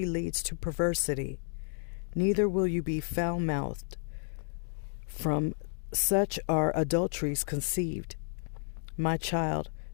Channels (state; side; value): silent; right; 57 dB below the other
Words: leads to perversity. Neither will you be foul-mouthed. From such are adulteries conceived. My child,